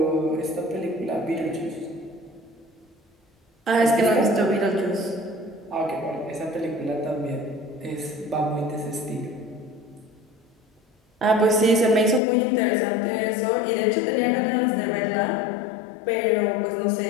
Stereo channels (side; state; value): right; drops out; at 12.2 s